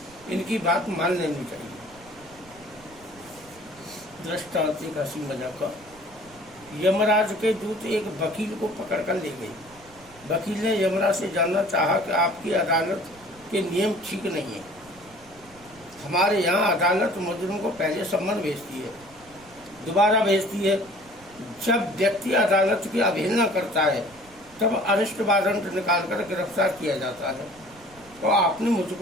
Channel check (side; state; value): right; noise; rumble, 25 dB below the sound